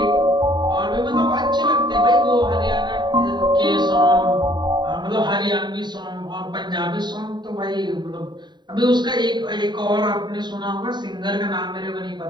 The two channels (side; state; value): left; late; 0.21 ms